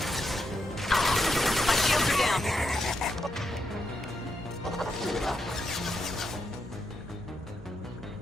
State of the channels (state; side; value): normal; both; correlation 0.82